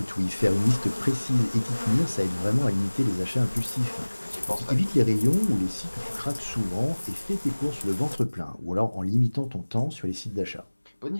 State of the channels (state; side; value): inverted; both; correlation -1.00